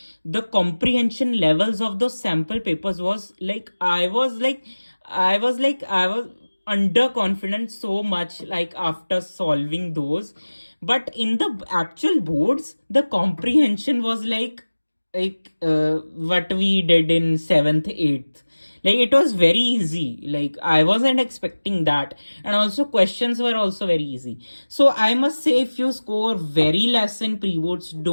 the comprehension levels of those sample papers was like I was underconfident so much, like after solving those. But in the actual boards, the comprehension was like what we did in 7th 8th. Like it was very easy, like I wasn't expecting that. And also questions were also very easy. So I must say, if you score very less in pre-boards,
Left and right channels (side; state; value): both; inverted; correlation -1.00